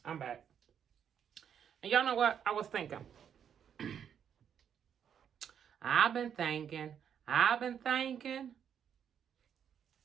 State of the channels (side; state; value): left; quieter; 8.4 dB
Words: I'm back. And y'all know what? I was thinking. I've been thinking. I just